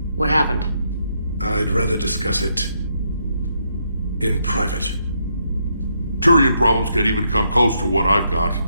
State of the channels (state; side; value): inverted; both; correlation -0.77